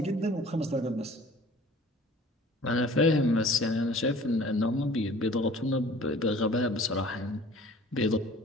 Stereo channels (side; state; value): both; normal; correlation 0.48